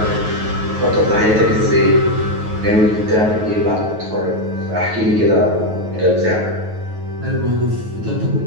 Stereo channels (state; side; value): late; left; 9.3 ms